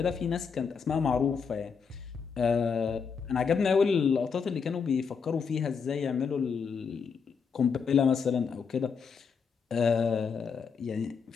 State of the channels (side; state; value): right; quieter; 5.9 dB